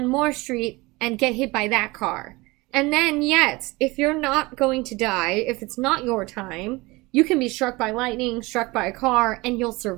more street and get hit by that car. And then, yet, if you're not going to die, if it's not your time, you can be struck by lightning, struck by a car, and you'll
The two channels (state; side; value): quieter; left; 22.8 dB